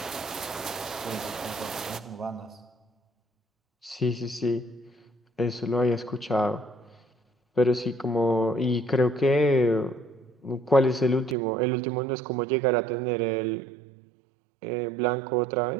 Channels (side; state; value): left; drops out; at 11.4 s